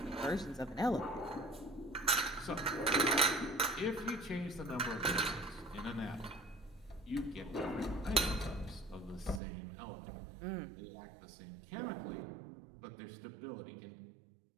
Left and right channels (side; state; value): left; drops out; at 9.4 s